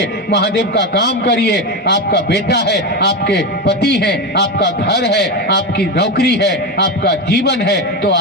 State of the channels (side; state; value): both; normal; correlation 0.16